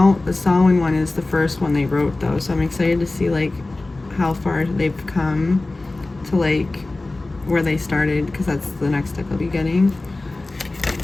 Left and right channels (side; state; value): right; quieter; 3.0 dB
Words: one is the first one they wrote though, so I'm excited to see like how far they've come to like where they started, because that's the next deck I'll be getting.